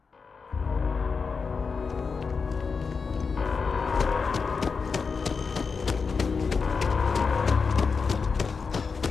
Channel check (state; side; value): quieter; right; 5.1 dB